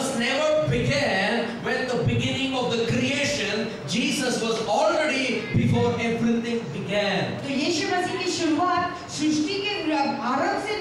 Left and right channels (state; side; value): identical; both; correlation 1.00